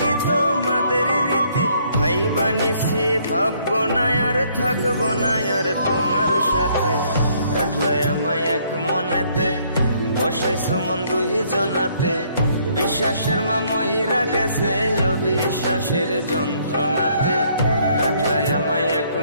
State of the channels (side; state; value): both; inverted; correlation -0.66